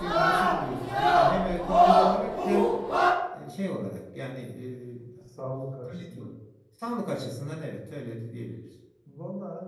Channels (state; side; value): identical; both; correlation 1.00